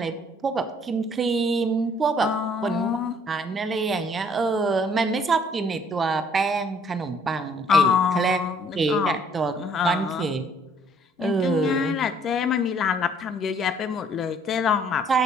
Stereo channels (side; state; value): both; normal; correlation 0.61